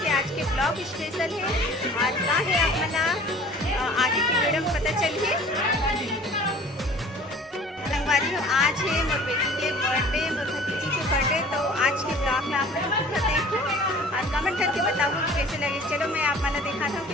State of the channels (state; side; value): normal; both; correlation 0.48